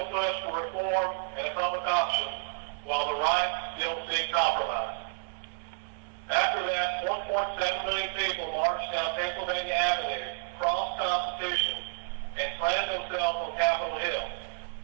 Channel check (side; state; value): left; silent; digital silence